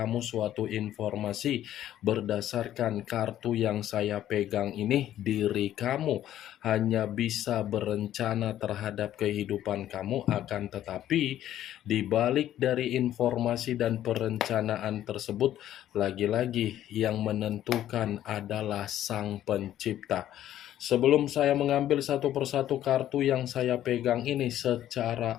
suatu informasi berdasarkan kartu yang saya pegang ini. Diri kamu hanya bisa berencana terhadap kehidupan kamu, akan tetapi di balik dari informasi dan perencanaan tersebut, lagi-lagi yang menentukan adalah Sang Pencipta. Sebelum saya mengambil satu persatu kartu yang saya pegang ini secara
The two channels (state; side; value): quieter; right; 12.2 dB